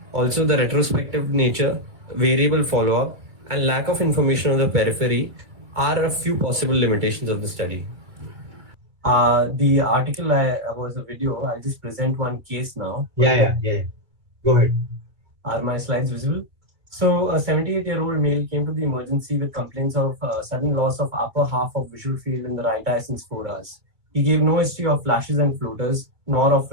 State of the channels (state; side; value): late; left; 2.3 ms